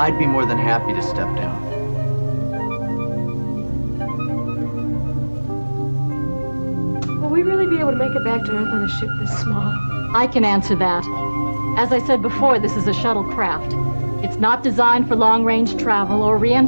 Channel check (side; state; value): both; inverted; correlation -1.00